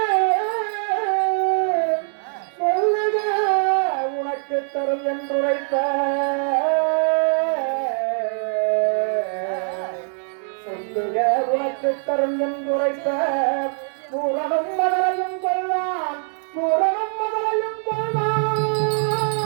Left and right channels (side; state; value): left; silent; 64 dB below the other